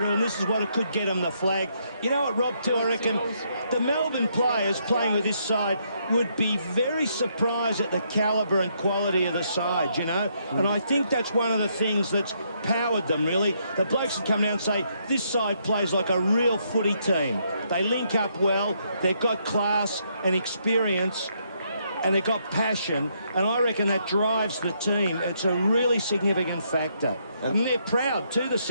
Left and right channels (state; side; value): inverted; both; correlation -0.74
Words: and this is what it could get them the flag. You know what, Rob, too, I reckon the Melbourne players playing with this side would be very surprised at the calibre and quality of the side, you know? And I think that's one of the things that's powered them, really. The blokes would come down and say, this side plays like a real footy team. They link up well, they've got class and experience, and they've got passion, and I reckon that drives the team. It's a really significant factor. And they're proud too, the